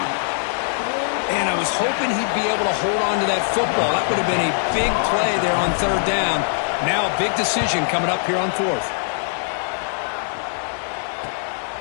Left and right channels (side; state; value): right; silent; digital silence